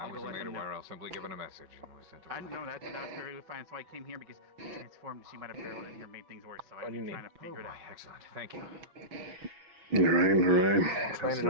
I'll go wasn't let made them know. aware. I'll simply given a message and was sent I away. know that's perfectly fine. So I came here because she transformed. She might have barreled in here, made things worse. So I've been trying to figure it out. Excellent. Thank you. All right, all right. Explain That's it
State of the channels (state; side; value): late; left; 6.0 ms